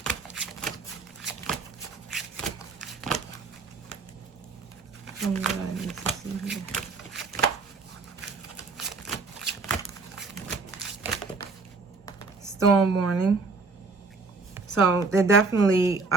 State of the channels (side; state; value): left; quieter; 4.1 dB